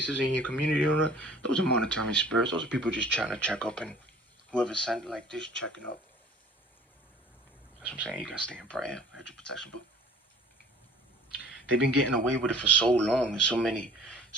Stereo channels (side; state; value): both; normal; correlation 0.50